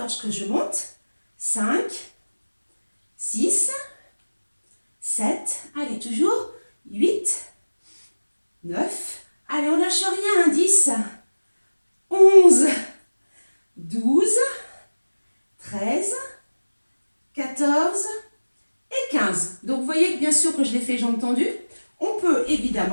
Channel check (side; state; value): both; inverted; correlation -1.00